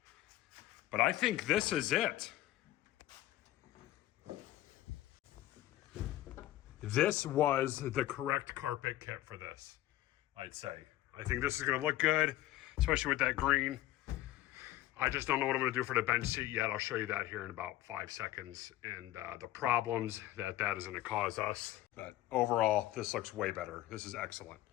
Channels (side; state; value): right; quieter; 14.8 dB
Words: But I think this is it. This was the correct carpet kit for this, I'd say. I think this is gonna look good, especially with that green. I just don't know what I'm gonna do for the bench seat yet. I'll show you that here in about 5 seconds and the problems that is gonna cause us. But overall, this looks way better. This is excellent.